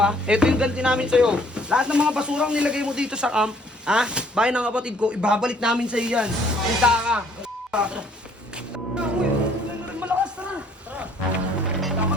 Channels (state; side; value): normal; both; correlation 0.61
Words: ha. Ito yung ganti namin sa'yo. Lahat ng mga basurang nilagay mo dito sa camp, ha? Bayan ng kapatid ko, ibabalik namin sa'yo yan. Kita ka. Uy, malakas, tara. Tama